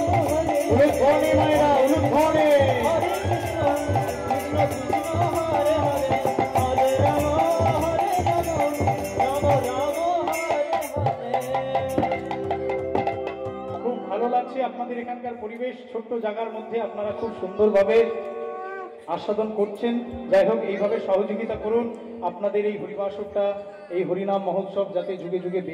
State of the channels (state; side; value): identical; both; correlation 1.00